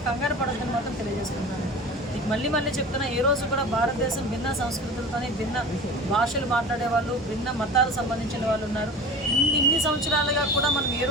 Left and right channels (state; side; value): normal; both; correlation 0.35